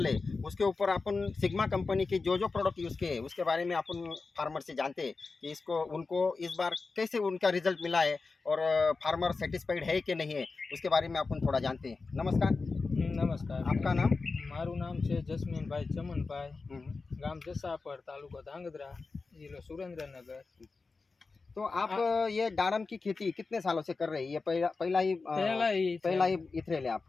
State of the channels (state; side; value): quieter; right; 4.1 dB